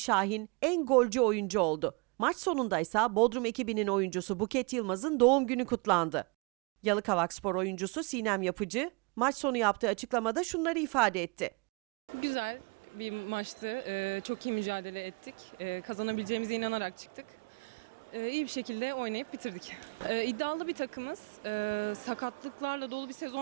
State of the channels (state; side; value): quieter; left; 30.9 dB